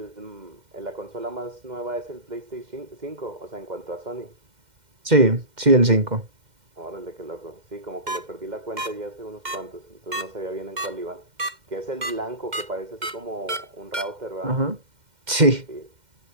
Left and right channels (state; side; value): late; left; 2.1 ms